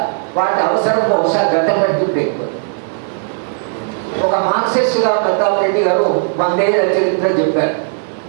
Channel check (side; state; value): left; silent; 55 dB below the other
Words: వాటి అవసరం బహుశా గతం కంటే ఎక్కువ. ఒక మార్క్సిస్ట్గా ప్రతాప్ రెడ్డి గారు 100 ఏళ్ల చరిత్ర చెప్పారు.